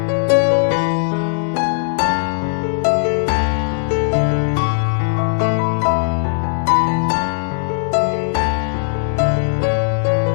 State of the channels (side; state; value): right; silent; digital silence